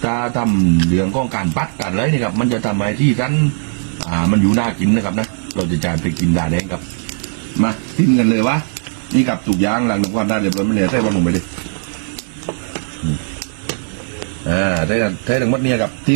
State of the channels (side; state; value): left; silent; 68 dB below the other